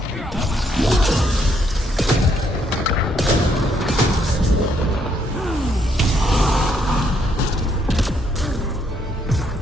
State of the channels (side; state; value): both; normal; correlation 0.72